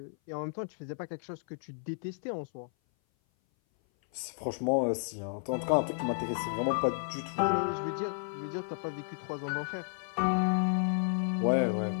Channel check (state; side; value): silent; right; 56 dB below the other